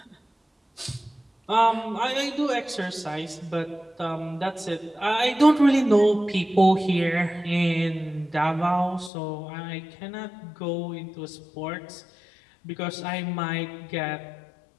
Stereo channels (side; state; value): right; drops out; at 9.1 s